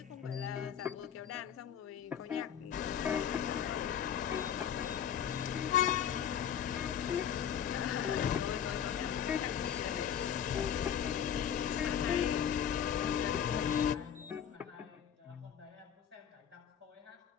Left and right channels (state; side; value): quieter; right; 8.9 dB